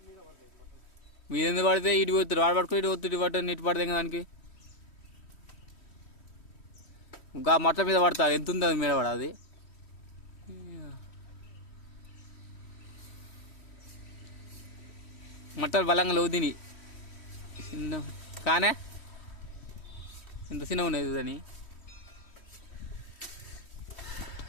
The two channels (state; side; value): late; right; 3.1 ms